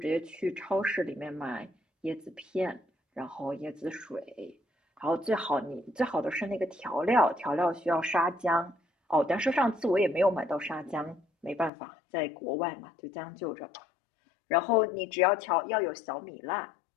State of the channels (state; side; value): drops out; right; at 11.7 s